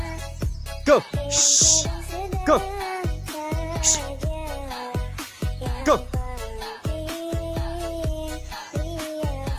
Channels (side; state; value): both; identical; correlation 1.00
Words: Go. Go. Go.